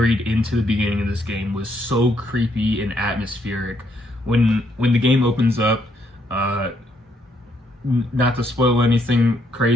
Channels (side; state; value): both; normal; correlation 0.73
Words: into the beginning of this game was so creepy and atmospheric. When the game opens up, not to spoil anything